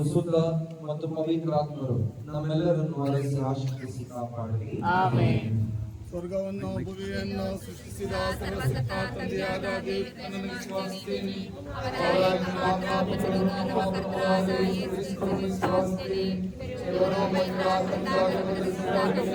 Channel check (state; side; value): identical; both; correlation 1.00